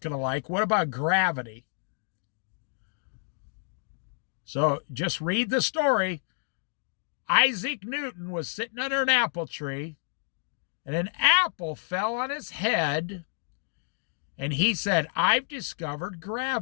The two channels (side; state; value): right; silent; digital silence